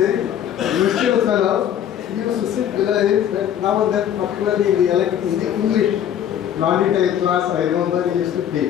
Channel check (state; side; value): quieter; right; 9.9 dB